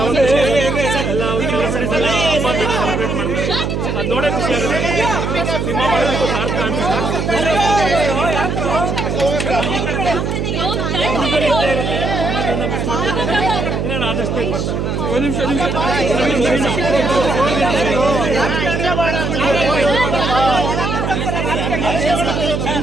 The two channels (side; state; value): right; noise; hum, 1 dB below the sound